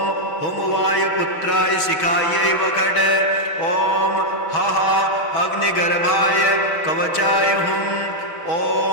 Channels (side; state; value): right; late; 6.2 ms